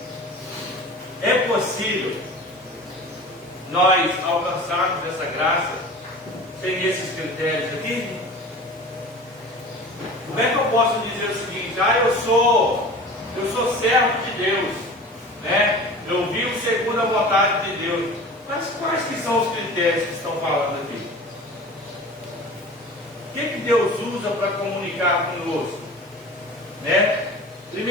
é possível nós alcançarmos essa graça sem esses critérios aqui? Como é que eu posso dizer o seguinte? Eu sou servo de Deus, né? Eu vivo segundo a vontade de Deus. Mas quais que são os critérios que estão falando aqui? O que Deus usa para comunicar conosco? Né?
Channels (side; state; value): both; normal; correlation 0.38